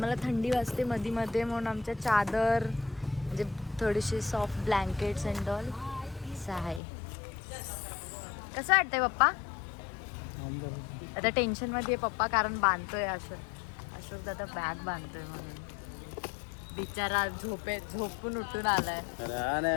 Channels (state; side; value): drops out; right; at 6.8 s